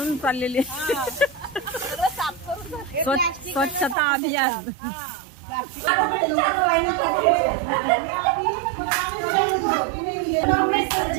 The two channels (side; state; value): left; drops out; at 4.0 s